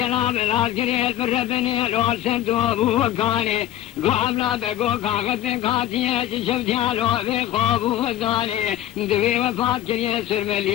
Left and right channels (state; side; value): quieter; right; 12.7 dB